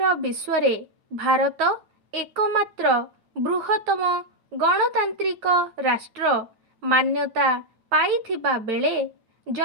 विश्व रे भारत एकमात्र बृहत्तम गणतांत्रिक राष्ट्र मान्यता पाइथिबा बेले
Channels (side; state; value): left; late; 8.9 ms